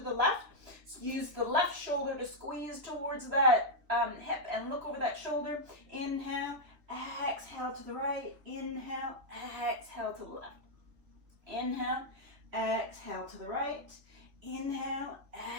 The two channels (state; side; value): late; left; 3.3 ms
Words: left. Use the left shoulder to squeeze towards that hip and look over that shoulder. Inhale, exhale to the right. Inhale, exhale to the left. Inhale, exhale to the right. Inhale,